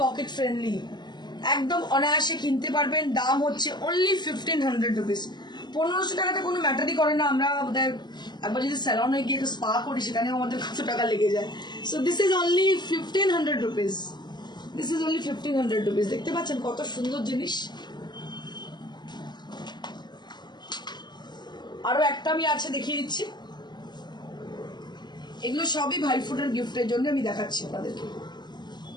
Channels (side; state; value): right; late; 0.21 ms